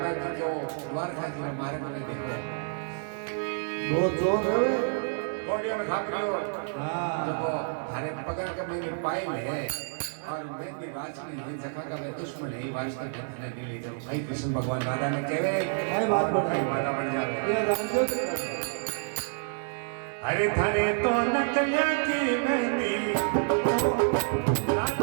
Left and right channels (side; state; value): left; silent; 58 dB below the other